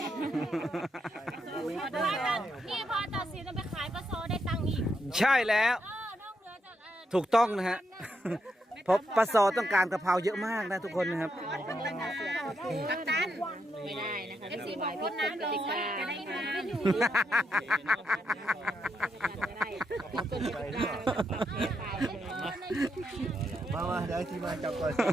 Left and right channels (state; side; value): normal; both; correlation 0.81